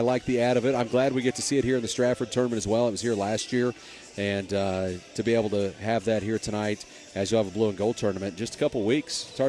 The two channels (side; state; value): both; identical; correlation 1.00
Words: the add of it. I'm glad we get to see it here in the Strafford tournament as well. It was here last year. And to be able to have that here tonight as you have a blue and gold tournament, just a couple weeks. It's